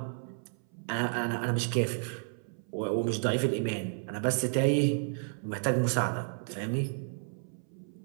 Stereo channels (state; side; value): silent; left; 57 dB below the other